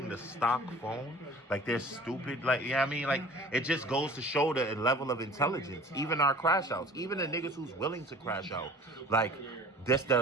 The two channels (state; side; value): normal; both; correlation 0.46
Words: the stock phone. Like, they're stupid. Like, you know what I mean? Like, it just goes to show the level of intelligence. Even our crash outs, even the niggas who's willing to crash out, like, just